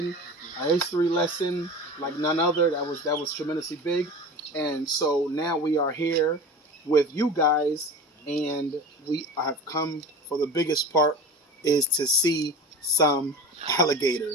a history lesson like none other. That was tremendously big. And so now we are here with you guys, and we have come for the biggest part is to see some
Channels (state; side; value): normal; both; correlation 0.33